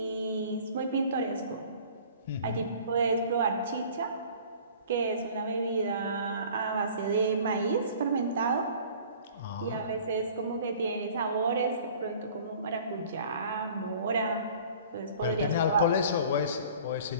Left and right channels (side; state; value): both; inverted; correlation -0.48